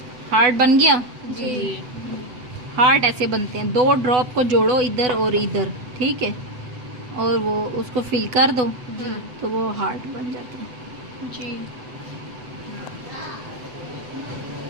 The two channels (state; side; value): late; left; 8.1 ms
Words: हार्ट बन गया। जी। हार्ट ऐसे बनते हैं, दो ड्रॉप को जोड़ो इधर और इधर, ठीक है, और वो उसको फिल कर दो तो वो हार्ट बन जाता है। जी।